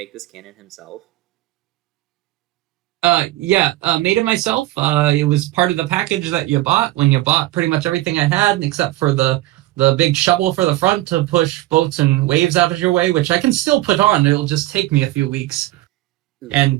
this cannon himself? Yeah, made it myself. It was part of the package that you bought when you bought pretty much everything I had, except for the big shovel for the front to push boats and waves out of your way, which I can still put on. It'll just take me a few weeks.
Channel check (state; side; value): quieter; left; 16.9 dB